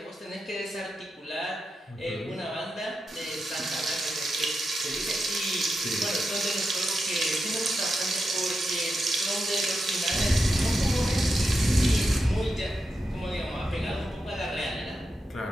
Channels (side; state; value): both; normal; correlation 0.87